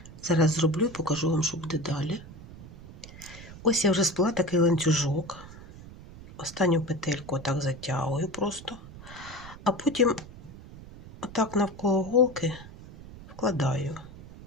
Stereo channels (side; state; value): right; noise; rumble, 16 dB below the sound